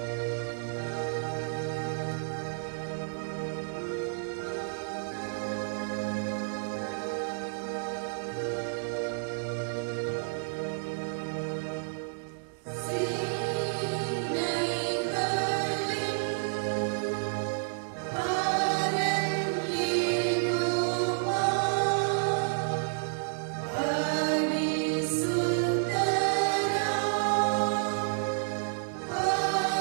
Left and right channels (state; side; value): silent; left; digital silence